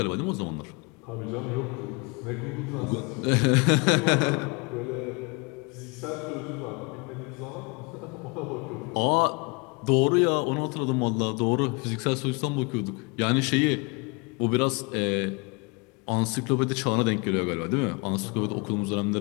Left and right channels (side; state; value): right; quieter; 29.7 dB